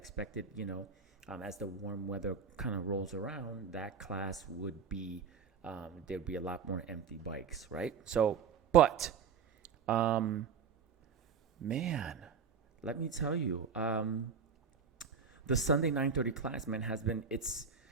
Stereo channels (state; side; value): quieter; left; 6.2 dB